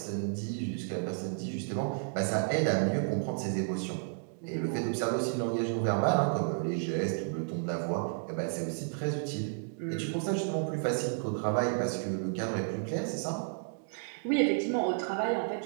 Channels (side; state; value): left; silent; digital silence